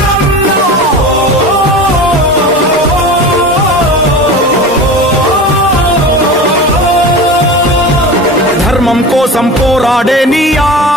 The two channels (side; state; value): both; normal; correlation 0.32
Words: ధర్మం కోసం పోరాడే నీ